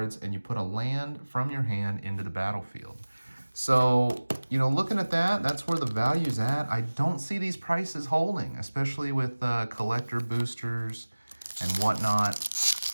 and you put a land from your hand into the battlefield. So, you know, looking at that, that's where the value's at. I don't see these prices holding, especially with collector boosters and whatnot.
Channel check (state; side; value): inverted; both; correlation -1.00